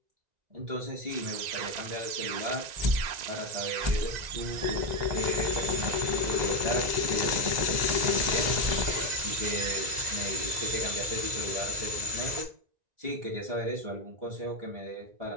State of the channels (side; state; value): left; late; 1.9 ms